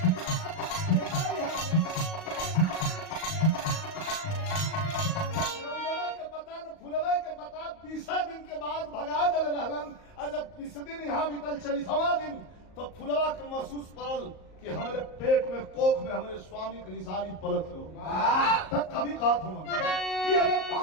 के पता न फुलवा के पता 20 दिन के बाद भगा दल रहलन और जब 20 दिन यहाँ बीतल 40वां दिन तो फुलवा के महसूस पड़ल कि हमारे पेट में कोख में हमारे स्वामी की निशानी पलक हो तब कभी कहा था कि अरे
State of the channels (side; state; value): right; late; 38 ms